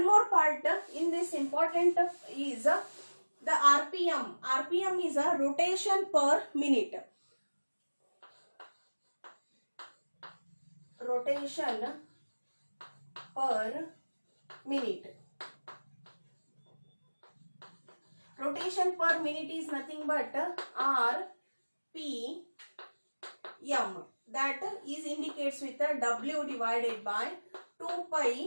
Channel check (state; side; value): inverted; both; correlation -1.00